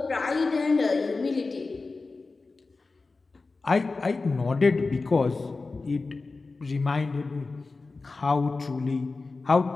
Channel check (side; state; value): right; quieter; 3.8 dB